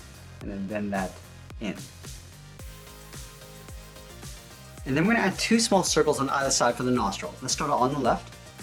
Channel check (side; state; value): both; identical; correlation 1.00